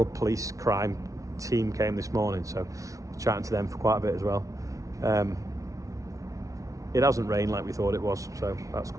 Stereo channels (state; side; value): late; left; 0.16 ms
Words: police crime team came this morning, so we're chatting to them for quite a bit as well. It hasn't rained like we thought it was, so that's